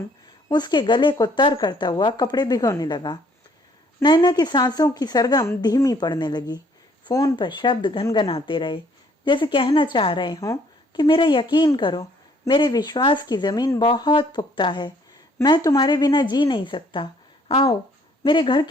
उसके गले को तर करता हुआ कपड़े भिगोने लगा। नैना की सांसों की सरगम धीमी पड़ने लगी। फोन पर शब्द घनघनाते रहे, जैसे कहना चाह रहे हों कि मेरा यकीन करो, मेरे विश्वास की जमीन बहुत पुख्ता है। मैं तुम्हारे बिना जी नहीं सकता। आओ, मेरे घर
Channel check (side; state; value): both; normal; correlation 0.62